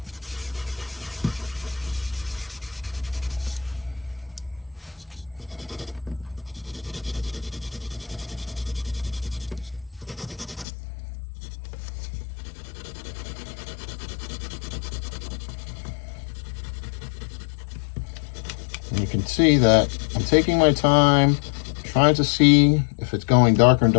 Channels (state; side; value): drops out; right; at 10.7 s